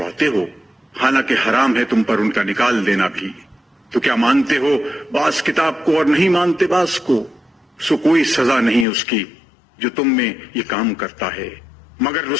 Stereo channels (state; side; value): drops out; right; at 8.8 s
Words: ہو، حالانکہ حرام ہے تم پر ان کا نکال دینا بھی۔ تو کیا مانتے ہو بعض کتاب کو اور نہیں مانتے بعض کو؟ سو کوئی سزا نہیں اس کی جو تم میں یہ کام کرتا ہے، مگر